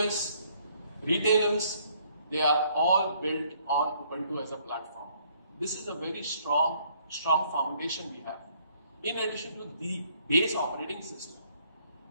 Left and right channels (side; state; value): both; inverted; correlation -0.64